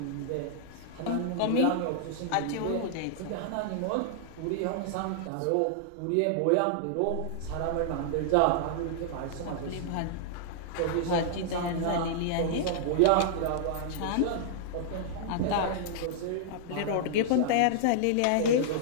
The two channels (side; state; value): both; different; correlation -0.01